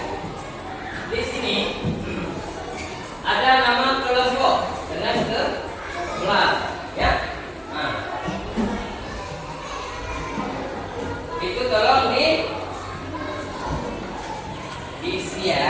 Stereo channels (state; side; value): identical; both; correlation 1.00